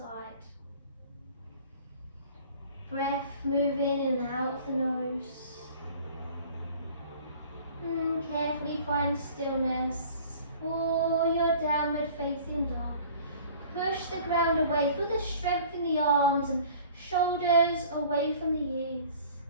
Breath moving in and out the nose. Carefully find stillness for your downward facing dog. Push the ground away, feel the strength in the arms and shoulders away from the ears.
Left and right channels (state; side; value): inverted; both; correlation -0.48